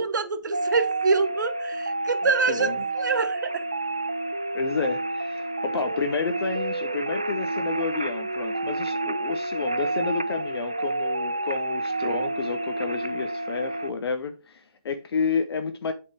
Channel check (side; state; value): both; inverted; correlation -0.60